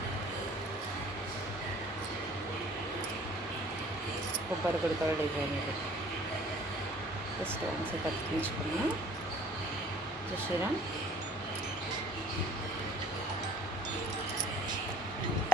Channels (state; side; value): normal; both; correlation 0.51